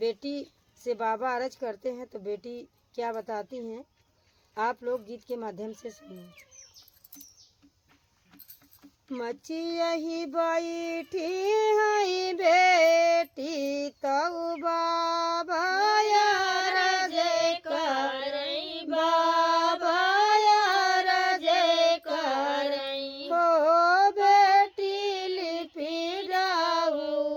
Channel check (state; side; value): identical; both; correlation 1.00